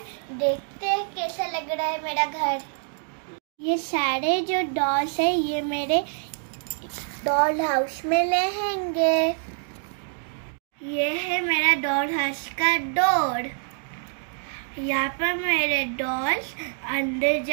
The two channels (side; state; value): left; silent; 61 dB below the other